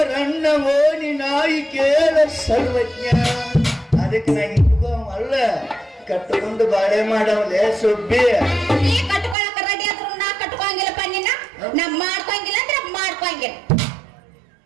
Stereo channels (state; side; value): drops out; left; at 9.3 s